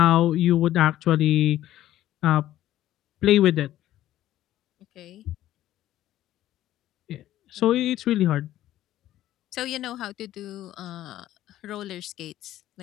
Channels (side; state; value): right; quieter; 13.5 dB